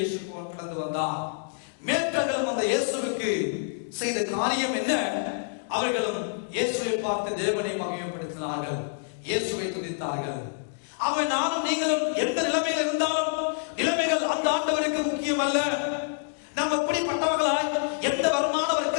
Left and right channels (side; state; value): right; silent; digital silence